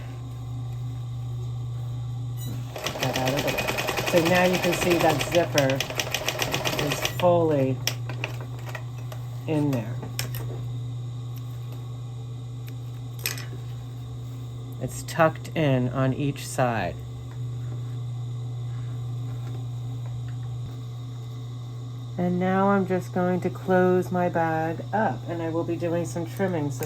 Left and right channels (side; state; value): both; identical; correlation 1.00